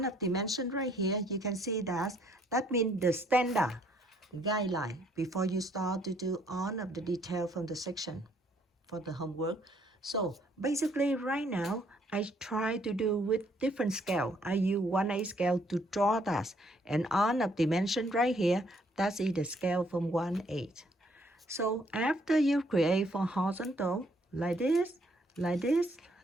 up dimension right here, you can see that means the standard guideline before you start to do on of the detail from the section for the homework. So basically right now I try to do with different scale. I use 1/8 scale to draw that, and on of dimension right here, that's the scale from 1/8. So after you create for horizontal like this, like this,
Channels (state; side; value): normal; both; correlation 0.66